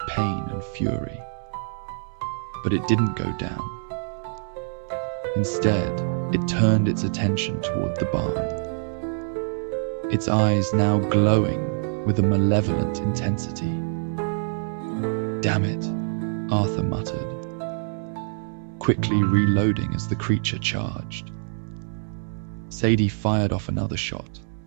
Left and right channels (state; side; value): silent; left; digital silence